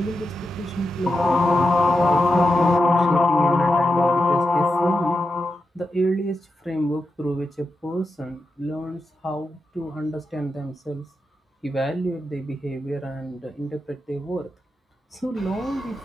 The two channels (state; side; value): normal; both; correlation 0.88